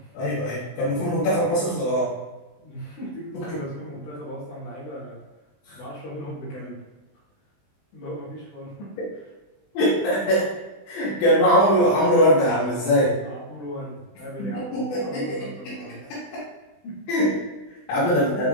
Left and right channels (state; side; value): late; right; 20 ms